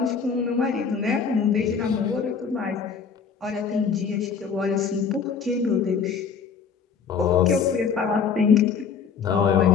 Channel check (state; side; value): quieter; right; 6.3 dB